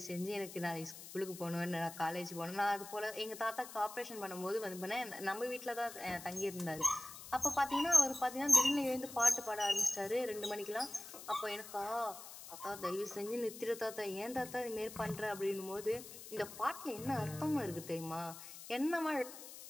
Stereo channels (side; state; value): left; noise; hiss, 13 dB below the sound